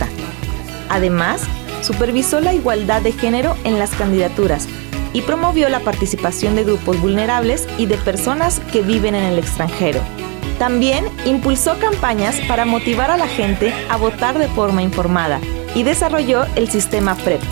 Además, supervisó la igualdad de género en las candidaturas y promovió la participación de grupos vulnerables y de personas que viven en el extranjero. También impulsó campañas para motivar a la gente a votar de forma informada y desarrolló el sistema PREP,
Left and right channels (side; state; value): left; quieter; 33.2 dB